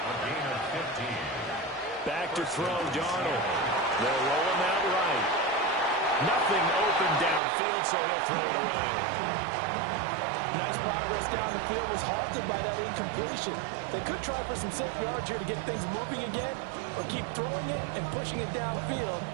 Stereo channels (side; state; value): left; drops out; at 7.4 s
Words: gain of 15. Back to throw, Darnold. They'll roll him out right. Nothing open downfield, so he'll throw it away. Nice progress down the field was halted by that incompletion. They could try for some safe yards here to get things moving again, or keep throwing it and pushing it downfield